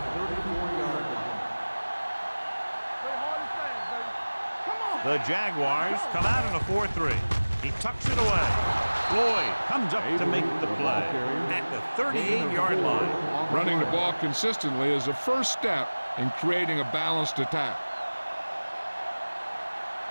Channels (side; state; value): both; inverted; correlation -1.00